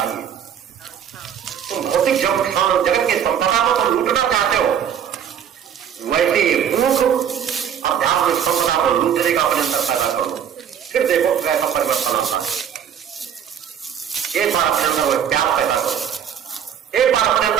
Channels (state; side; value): quieter; left; 8.7 dB